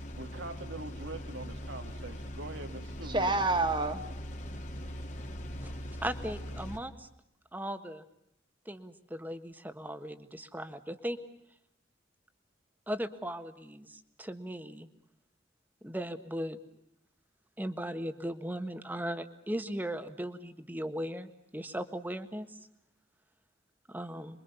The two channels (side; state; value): both; normal; correlation 0.52